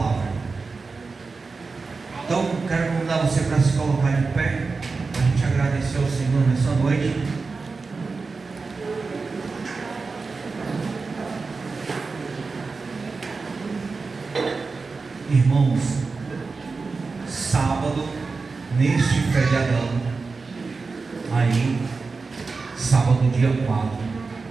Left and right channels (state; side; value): quieter; left; 4.3 dB